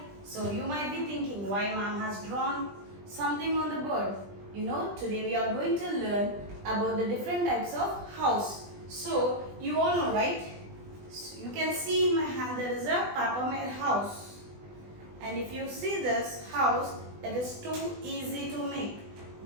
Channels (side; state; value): left; late; 20 ms